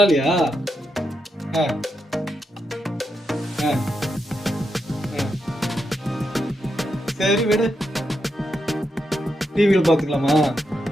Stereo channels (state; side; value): normal; both; correlation 0.84